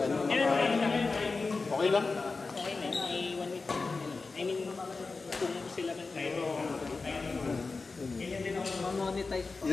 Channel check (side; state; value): right; quieter; 4.0 dB